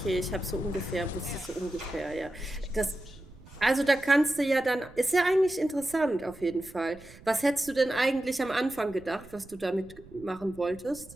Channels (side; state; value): right; noise; rumble, 21 dB below the sound